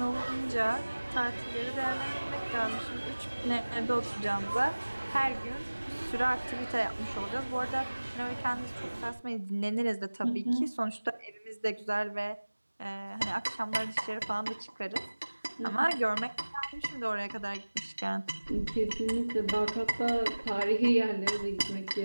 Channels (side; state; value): both; inverted; correlation -1.00